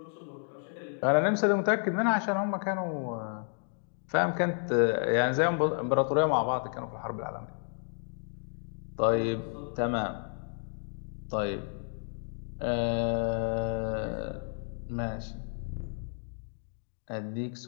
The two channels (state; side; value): silent; right; 57 dB below the other